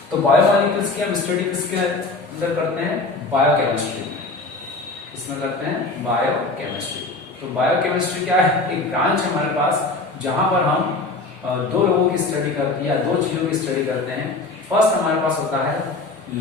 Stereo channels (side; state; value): right; quieter; 3.3 dB